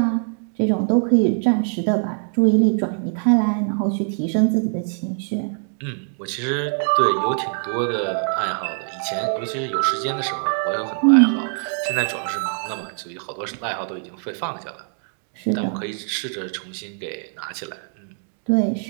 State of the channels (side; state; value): left; silent; 59 dB below the other